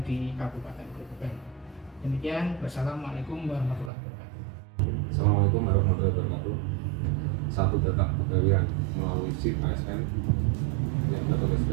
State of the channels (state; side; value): drops out; left; at 3.9 s